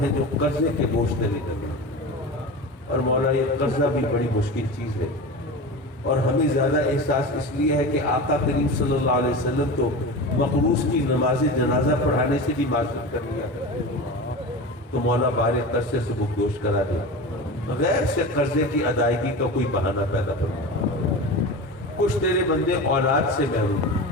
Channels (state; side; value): normal; both; correlation 0.28